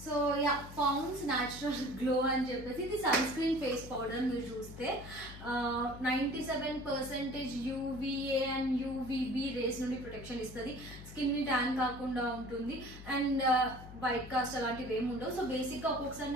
So so yeah, Pond's natural glow అని చెప్పేసి ఇది సన్ స్క్రీన్ ఫేస్ పౌడర్. మీరు చూస్తే 97% UVA అండ్ UVB రేస్ నుండి ప్రొటెక్షన్ ఇస్తుంది. స్కిన్ ని ట్యాన్ కాకుండా ఉంటుంది అండ్ వైట్ కాస్ట్ అలాంటివి ఏమి ఉండవు. సో బేసిక్ గా ఒక్కొక్కసారి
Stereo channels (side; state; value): left; noise; hum, 14 dB below the sound